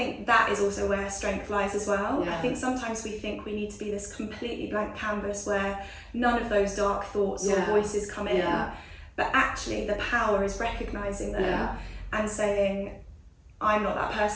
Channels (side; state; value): both; identical; correlation 1.00